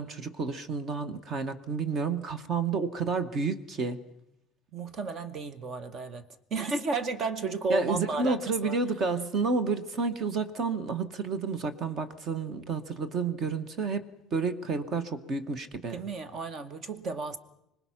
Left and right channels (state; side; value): quieter; left; 3.9 dB